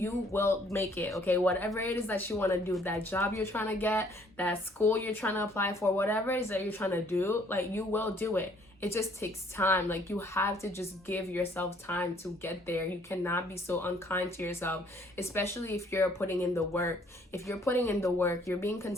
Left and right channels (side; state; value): both; normal; correlation 0.62